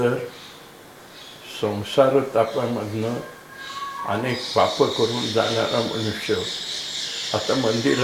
संसार तापामधनं अनेक पापं करून जाणारा मनुष्य आता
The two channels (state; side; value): identical; both; correlation 1.00